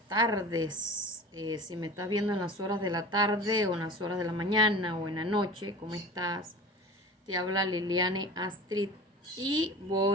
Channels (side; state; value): both; normal; correlation 0.36